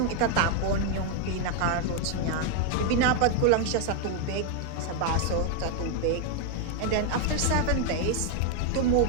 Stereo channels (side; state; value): both; different; correlation 0.01